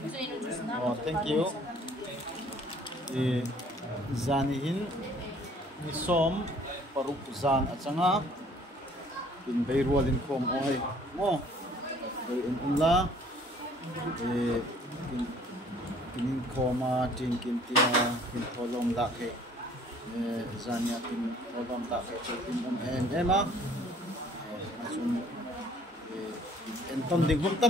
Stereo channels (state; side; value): normal; both; correlation 0.56